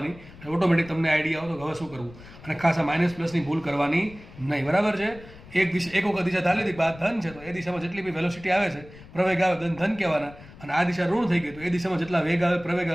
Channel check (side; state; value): left; noise; rumble, 19 dB below the sound